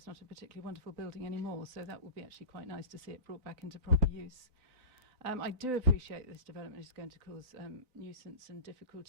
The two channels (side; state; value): left; late; 3.9 ms